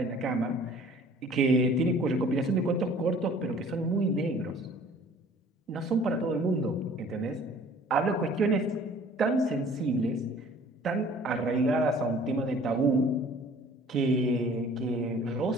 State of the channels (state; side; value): normal; both; correlation 0.51